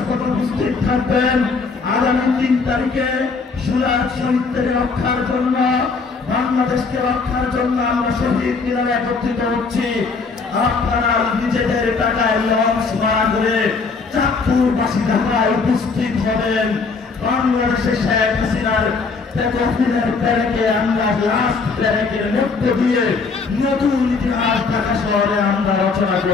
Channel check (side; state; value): right; quieter; 4.5 dB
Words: উপস্থিত থাকবেন। আগামী 3 তারিখে সুরাজ শহীদদের রক্ষার জন্য, বাংলাদেশকে রক্ষার জন্য আমরা শহীদ মিনারে একত্রিত হচ্ছি। আপনারা নিজেদের টাকায় লঞ্চ ভাড়া করে চাঁদপুরবাসী ঢাকায় উপস্থিত হবেন। বাংলাদেশে শেখ হাসিনার প্যারেকে আমরা লাস্ট প্যারেকের মধ্য দিয়ে নতুন ইতিহাস ঢাকা শহরে আমরা রচনা